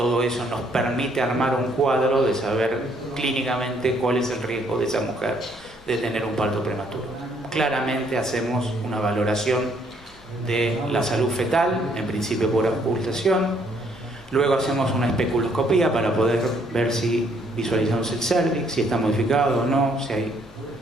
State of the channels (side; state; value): both; normal; correlation 0.67